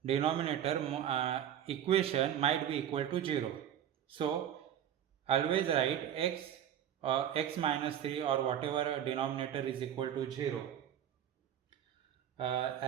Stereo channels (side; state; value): left; quieter; 10.1 dB